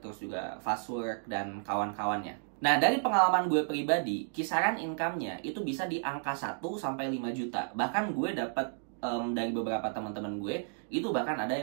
juga Fastwork, dan kawan-kawannya. Nah, dari pengalaman gue pribadi, kisaran income-nya itu bisa di angka 1 sampai 5 juta. Bahkan gue dapat dari beberapa teman-teman gue, itu bahkan ada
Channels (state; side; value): silent; left; digital silence